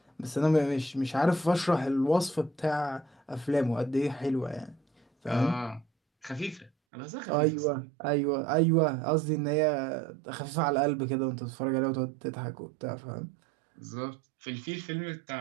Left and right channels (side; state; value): left; drops out; at 6.7 s